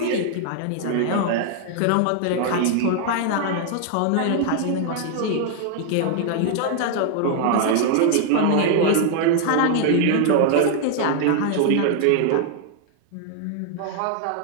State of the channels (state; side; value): different; both; correlation 0.00